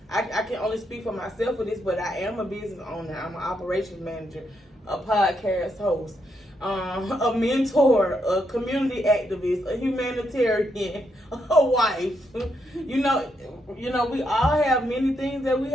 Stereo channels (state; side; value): normal; both; correlation 0.79